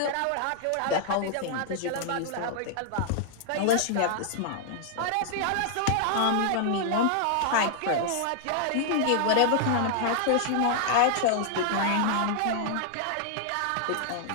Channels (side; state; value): both; different; correlation -0.01